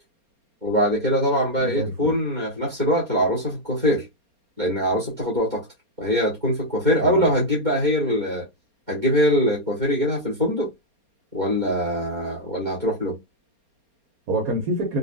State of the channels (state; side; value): late; left; 4.3 ms